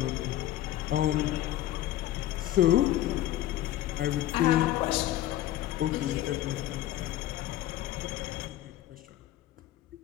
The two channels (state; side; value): quieter; right; 13.9 dB